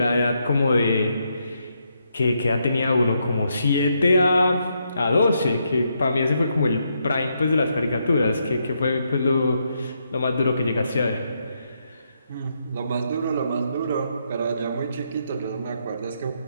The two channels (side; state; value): both; inverted; correlation -0.79